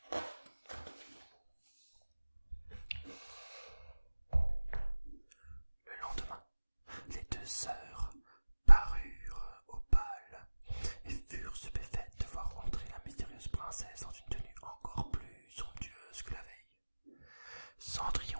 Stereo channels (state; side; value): inverted; both; correlation -1.00